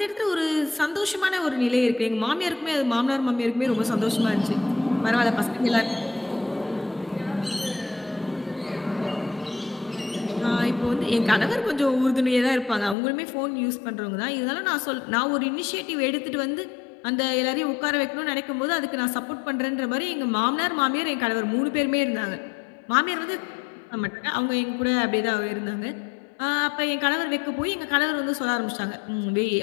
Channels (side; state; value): right; drops out; at 13.0 s